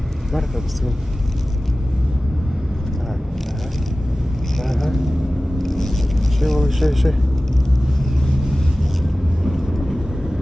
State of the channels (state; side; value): normal; both; correlation 0.96